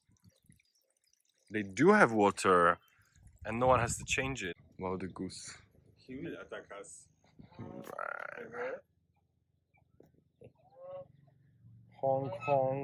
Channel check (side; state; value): both; identical; correlation 1.00